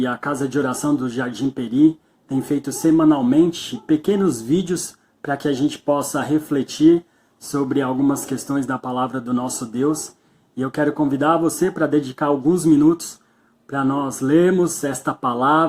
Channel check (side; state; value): both; identical; correlation 1.00